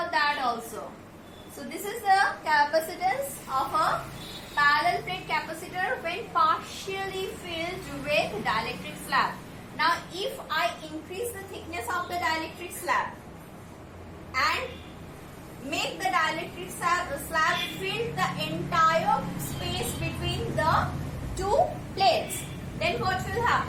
that also. So this is the capacitance of a parallel plate capacitor when partially filled with dielectric slab. Now if I increase the thickness of the dielectric slab and make the dielectric slab fill the entire space between the two plates, then what will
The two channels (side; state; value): both; identical; correlation 1.00